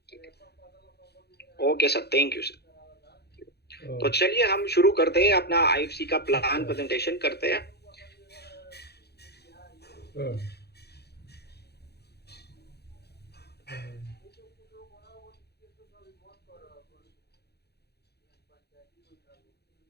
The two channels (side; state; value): right; late; 0.48 ms